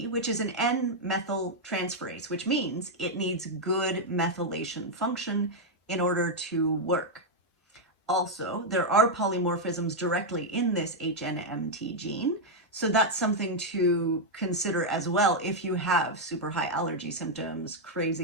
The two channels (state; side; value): normal; both; correlation -0.01